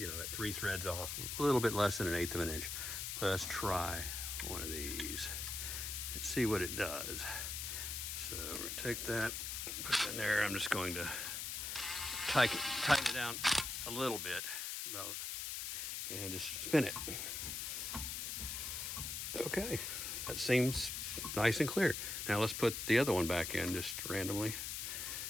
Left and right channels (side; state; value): left; noise; hiss, 3 dB below the sound